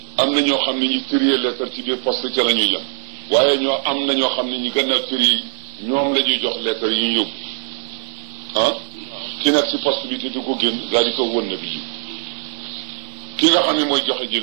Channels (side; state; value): left; silent; digital silence